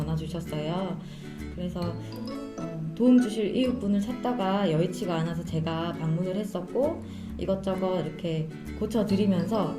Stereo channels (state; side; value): identical; both; correlation 1.00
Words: 주셨어요. 그래서 도움 주실 이웃분을 찾다가 여의치가 않아서 제가 방문을 했었고 이것저것 이렇게 고쳐드리면서